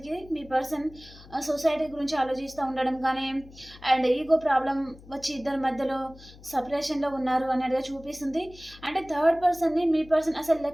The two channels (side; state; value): left; noise; hum, 21 dB below the sound